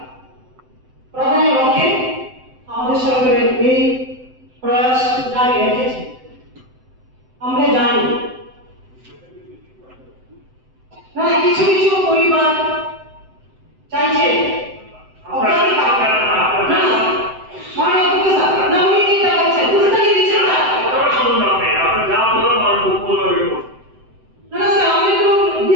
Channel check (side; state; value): left; late; 7.8 ms